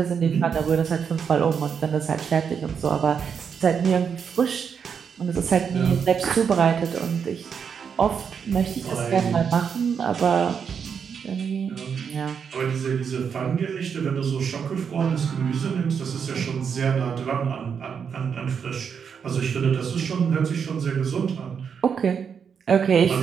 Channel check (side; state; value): left; quieter; 6.8 dB